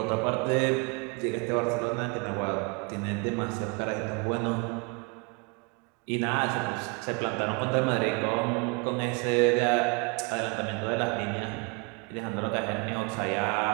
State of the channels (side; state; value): left; quieter; 32.5 dB